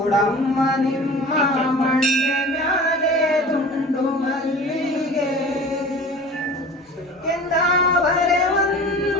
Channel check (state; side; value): normal; both; correlation 0.40